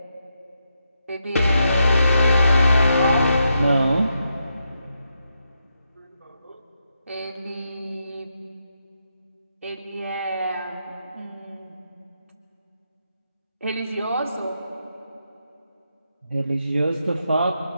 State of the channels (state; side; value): inverted; both; correlation -0.82